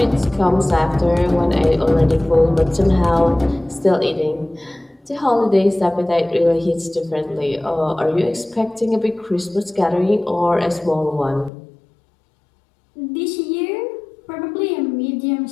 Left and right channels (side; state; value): right; drops out; at 11.5 s